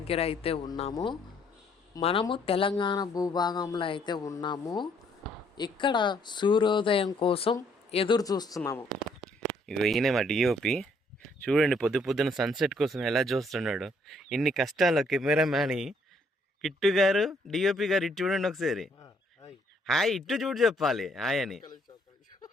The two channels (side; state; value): both; normal; correlation 0.66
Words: అయితే ఉన్నాము. మనము తెలంగాణ భూభాగంలో అయితే ఉన్నాము. ఇక్కడ సూర్యోదయం కోసం ఎదురు చూస్తున్నాము. ఇగో ఈయనే మా డిఓపి. చూడండి పొద్దున సన్సెట్ కోసం ఎలా చూస్తున్నాడు. ఇన్ని కష్టాలు కెమెరామ్యాన్ కిట్టు గారు, డిఓపి గారు ఇటు చూడండి ఒకసారి. హాయ్ ఇటు చూడు చెప్పాలి హాయ్ అని.